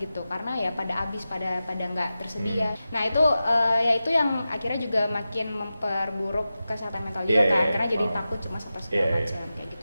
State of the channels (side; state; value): both; inverted; correlation -0.93